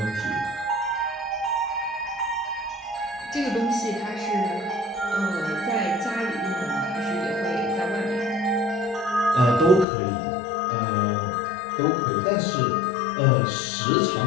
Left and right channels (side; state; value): right; drops out; at 9.9 s